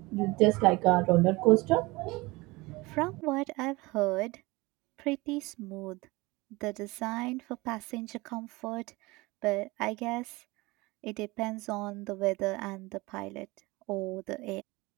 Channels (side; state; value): left; quieter; 22.7 dB